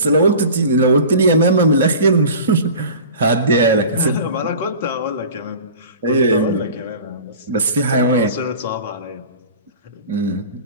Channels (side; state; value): both; inverted; correlation -0.40